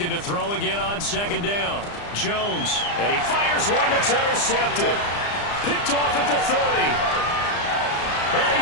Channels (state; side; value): late; right; 35 ms